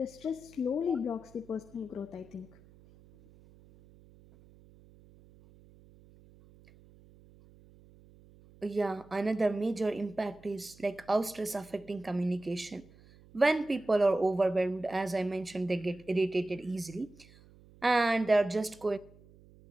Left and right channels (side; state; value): right; noise; hum, 25 dB below the sound